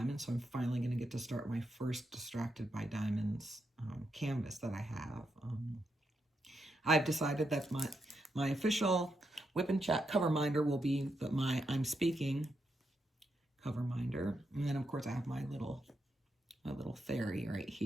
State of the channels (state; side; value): normal; both; correlation 0.83